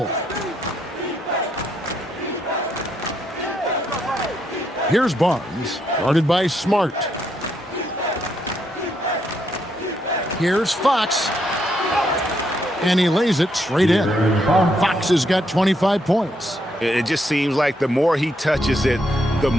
Here's Barnes, guarded by Smart. Here's Fox. And he lays it straight in. Fox has got 25 points. It just seems like the more he touches it, the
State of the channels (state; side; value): normal; both; correlation 0.76